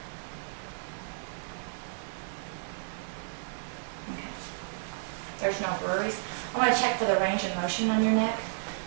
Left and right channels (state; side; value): silent; left; 56 dB below the other